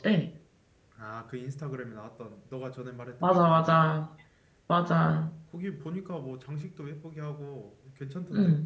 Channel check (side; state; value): both; identical; correlation 1.00